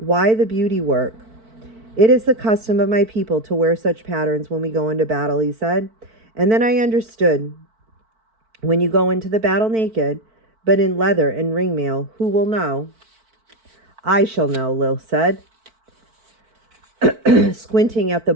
the beauty work?" "It is the custom of my people to wear such patterns when we go into battle," he said. And then I understood. When you go into the battle naked, but in leather and ringmail, who will know? "I shall know," Lil said, squinting at the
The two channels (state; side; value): late; left; 4.5 ms